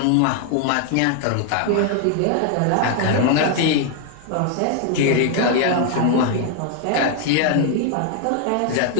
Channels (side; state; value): both; different; correlation 0.00